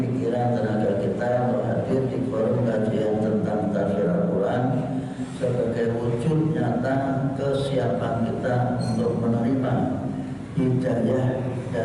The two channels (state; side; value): identical; both; correlation 1.00